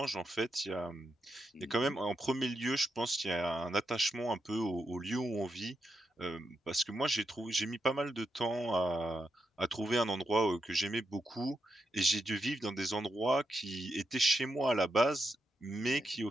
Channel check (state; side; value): normal; both; correlation 0.85